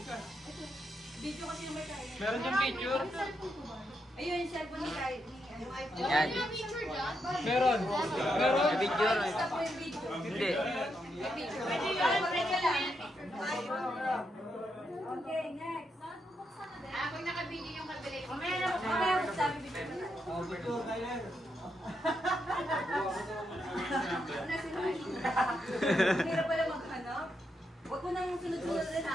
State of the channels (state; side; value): normal; both; correlation 0.82